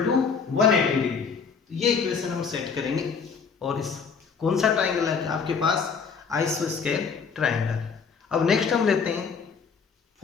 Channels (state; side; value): quieter; right; 5.8 dB